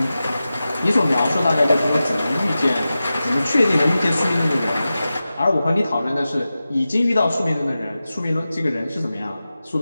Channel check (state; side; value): inverted; both; correlation -0.94